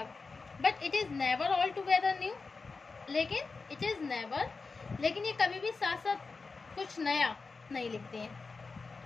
but it is never all together new. लेकिन ये कभी भी साथ साथ कुछ नया नहीं लिखते हैं.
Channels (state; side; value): quieter; right; 4.3 dB